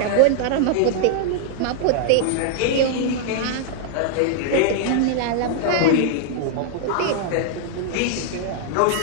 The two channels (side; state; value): both; different; correlation -0.01